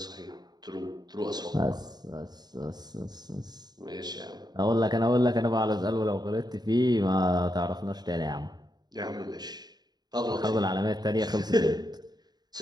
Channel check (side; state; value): left; late; 0.20 ms